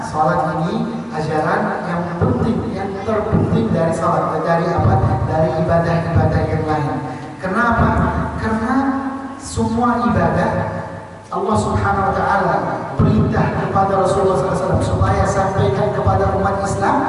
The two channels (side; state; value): both; identical; correlation 1.00